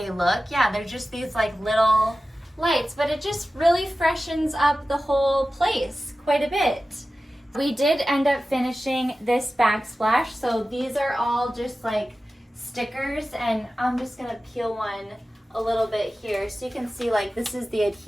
look, yeah, they're just these like little lights, but it just really freshens up the whole place quite a bit. We did end up finishing this backsplash, so these are all just like stickers, and I'm just gonna peel one a little bit here so you can see like this is the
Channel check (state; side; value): normal; both; correlation 0.95